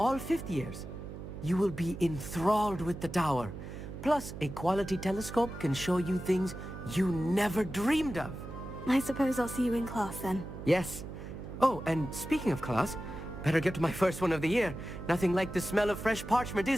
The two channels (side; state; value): right; noise; hum, 10 dB below the sound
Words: 5th years. You will be enthralled with the tower. Plus, a quality telescope can show you things you never dreamed of. I suppose I'll see you in class then. Yes. Oh, and speaking of class, better get to my first one of the year. Nothing like the smell of fresh parchment,